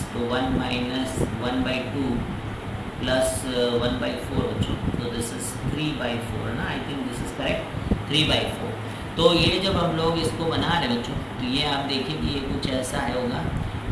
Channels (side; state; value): both; identical; correlation 1.00